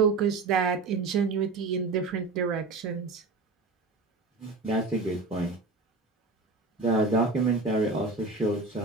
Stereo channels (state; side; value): quieter; left; 3.7 dB